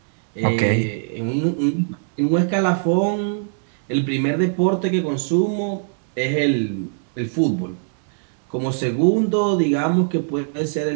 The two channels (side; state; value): left; silent; digital silence